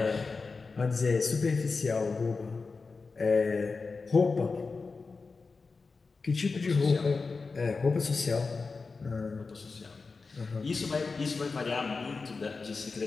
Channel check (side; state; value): right; quieter; 4.3 dB